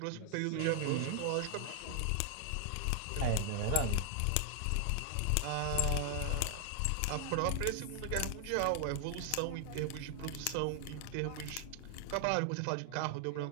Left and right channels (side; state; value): both; different; correlation 0.00